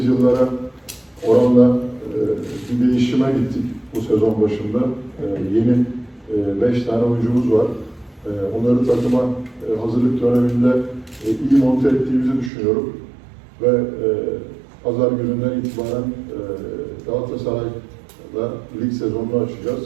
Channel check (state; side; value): drops out; left; at 12.5 s